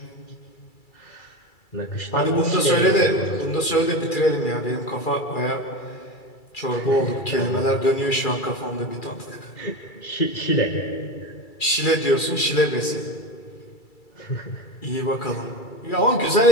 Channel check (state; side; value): late; right; 2.3 ms